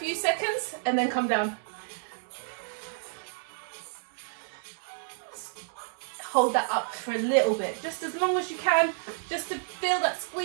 seconds, and then come down. Hold that up for a little bit, just as long as you can, just to feel that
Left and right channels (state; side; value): silent; left; digital silence